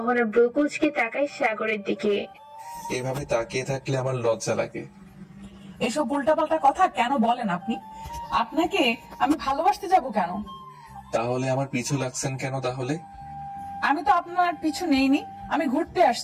ব্রু কুচকে তাকায় সাগরের দিকে। এভাবে তাকিয়ে থাকলে আমার লজ্জা লাগে। এসব উল্টাপাল্টা কথা কেন বলেন আপনি? আপনাকে আমি ভালোবাসতে যাব কেন? তাহলে আমার পিছু লাগছেন কেন তাহলে? আমি তো আপনার পিছু নেইনি, আমি ঘুরতে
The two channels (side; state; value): both; identical; correlation 1.00